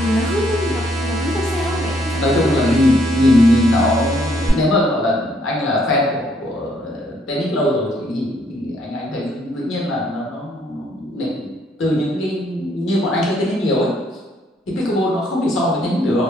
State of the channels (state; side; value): normal; both; correlation 0.69